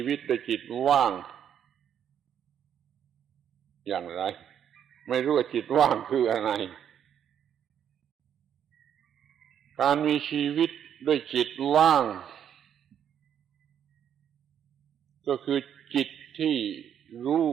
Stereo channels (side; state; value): left; quieter; 9.1 dB